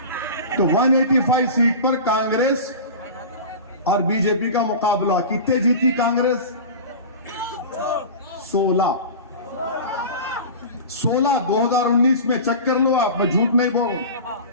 तो 185 सीट पर कांग्रेस और बीजेपी का मुकाबला। कितने जीती कांग्रेस? 16। 2019 में चेक कर लो आप, मैं झूठ नहीं बोल रहा।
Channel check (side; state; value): both; inverted; correlation -0.32